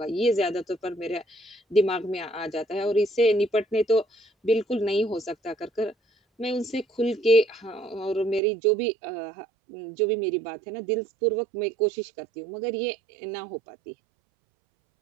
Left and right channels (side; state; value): left; drops out; at 8.4 s